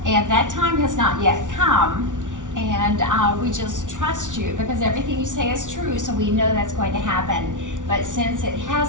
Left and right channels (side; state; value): left; late; 0.87 ms